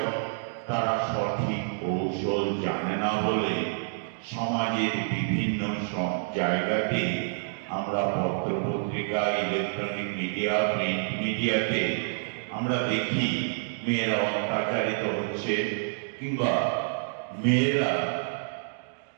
তারা সঠিক কৌশল জানে না বলে সমাজের বিভিন্ন জায়গাতে আমরা পত্রপত্রিকা, ইলেকট্রনিক মিডিয়া, প্রিন্ট মিডিয়াতে আমরা দেখি মেয়েরা অত্যাচারিত হচ্ছে কিংবা মেয়েরা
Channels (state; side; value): silent; left; digital silence